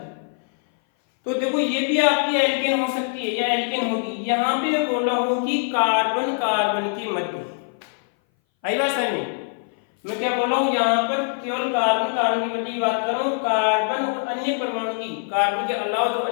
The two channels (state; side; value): silent; right; 59 dB below the other